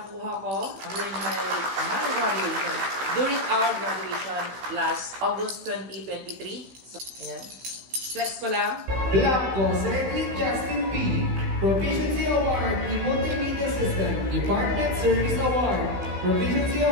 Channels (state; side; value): late; left; 16 ms